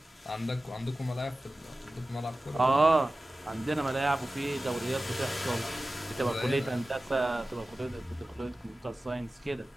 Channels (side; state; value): both; normal; correlation 0.96